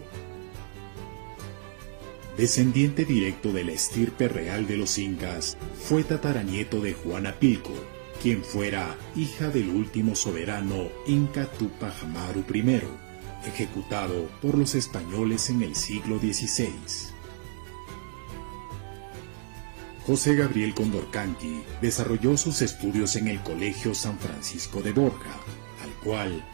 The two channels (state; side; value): silent; left; 59 dB below the other